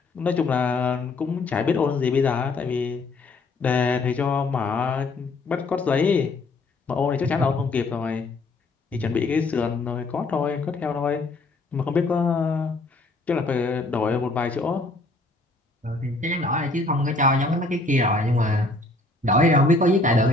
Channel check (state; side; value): quieter; right; 3.2 dB